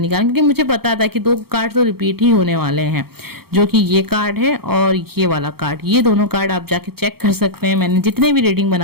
क्योंकि मुझे पता था कि 2 कार्ड तो रिपीट ही होने वाले हैं, जो कि ये कार्ड है और ये वाला कार्ड। ये दोनों कार्ड आप जाके चेक कर सकते हैं। मैंने जितने भी रीडिंग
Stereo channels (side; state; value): left; late; 0.95 ms